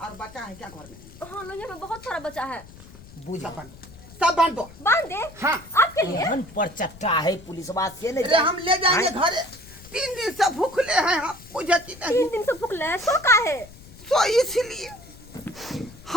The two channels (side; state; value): left; noise; rumble, 20 dB below the sound